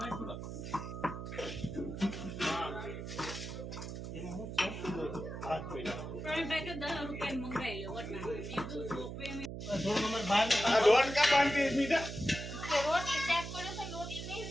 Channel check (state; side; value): noise; right; hum, 7 dB below the sound